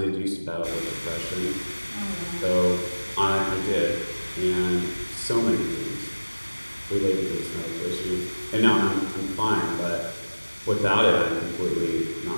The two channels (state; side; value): inverted; both; correlation -1.00